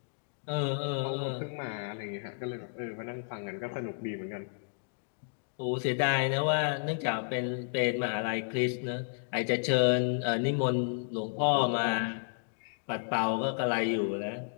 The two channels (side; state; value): right; silent; digital silence